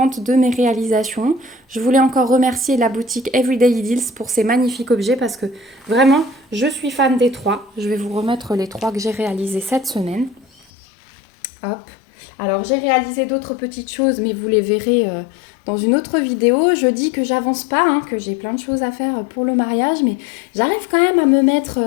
de mes réalisations. Je voulais encore remercier la boutique Everyday Deals pour ces magnifiques objets parce que vraiment, je suis fan des 3. Je vais vous remettre les 3 que j'ai réalisés cette semaine. Hop. Alors j'ai réalisé d'autres petites choses, mais vous les verrez dans une autre vidéo. Je dis que j'avance pas, que j'ai plein de choses à faire pour le mariage, mais j'arrive quand même à me mettre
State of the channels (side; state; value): right; drops out; at 10.7 s